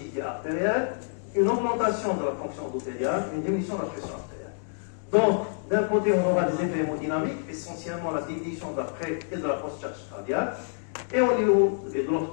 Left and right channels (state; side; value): silent; right; digital silence